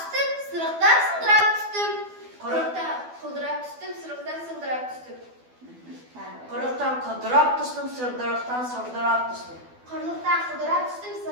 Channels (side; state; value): left; late; 12 ms